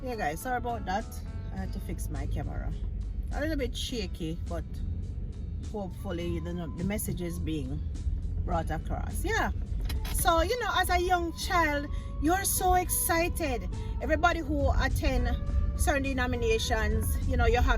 Yeah guys, sorry about that. I had to fix my camera. A little bit shaky, but hopefully the message is being brought across. Yeah, so you know, as a young child, you're so excited. Everybody who attend certain denominations, you know, you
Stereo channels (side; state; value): both; identical; correlation 1.00